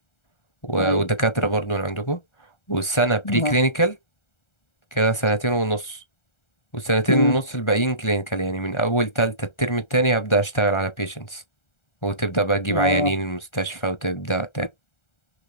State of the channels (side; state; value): right; late; 1.3 ms